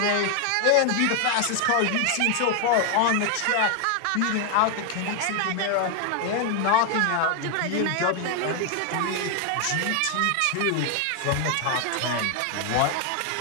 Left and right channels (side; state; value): both; different; correlation 0.00